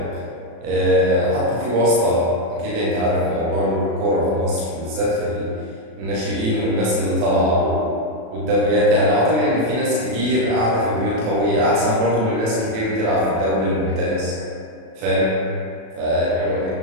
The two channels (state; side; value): late; left; 36 ms